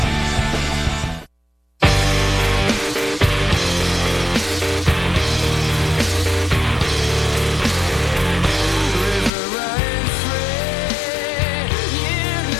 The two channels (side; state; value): right; drops out; at 9.3 s